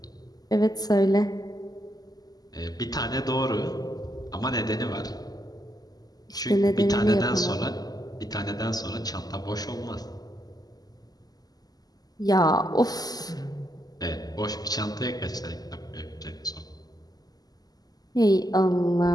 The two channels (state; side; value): late; right; 0.18 ms